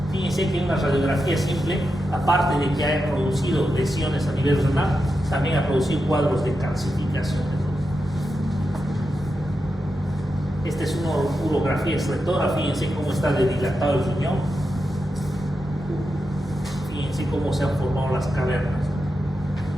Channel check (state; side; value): normal; both; correlation 0.88